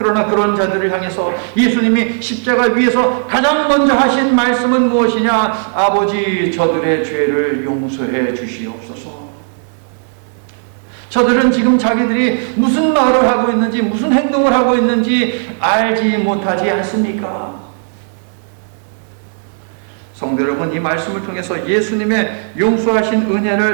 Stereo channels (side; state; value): left; silent; 70 dB below the other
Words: 그런 자들을 향해서 예수님이 십자가 위에서 가장 먼저 하신 말씀은 무엇이냐? 아버지, 저들의 죄를 용서해 주시옵소서. 저들은 지금 자기들이 무슨 말을 하고 있는지 무슨 행동을 하고 있는지 알지 못하지 않습니까? 성도 여러분, 이 말씀을 통해서 예수님의 용서하신